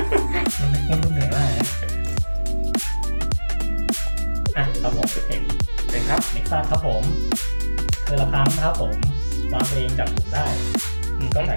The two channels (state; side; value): inverted; both; correlation -1.00